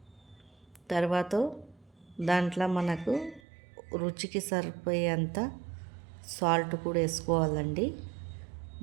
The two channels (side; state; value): left; drops out; at 3.4 s